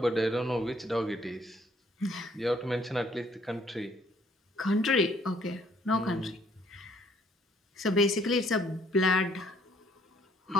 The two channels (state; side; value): normal; both; correlation 0.63